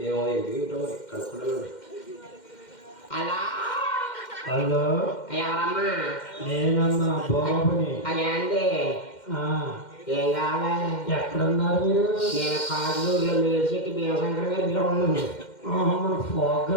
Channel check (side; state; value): right; late; 2.1 ms